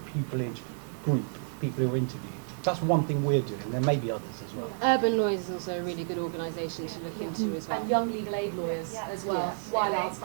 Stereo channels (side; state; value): left; quieter; 38.6 dB